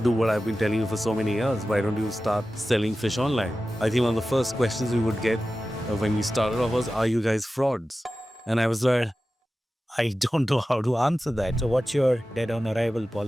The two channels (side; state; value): both; normal; correlation 0.94